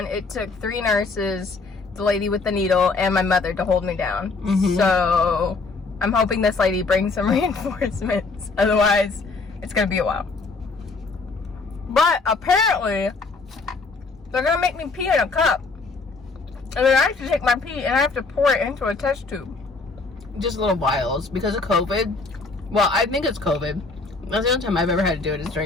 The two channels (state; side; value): quieter; right; 4.0 dB